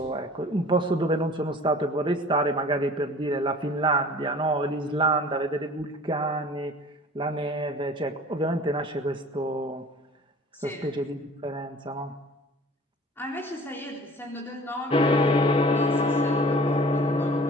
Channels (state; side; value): normal; both; correlation 0.46